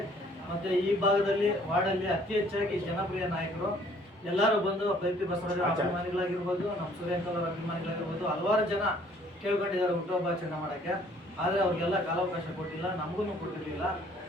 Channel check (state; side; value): normal; both; correlation 0.59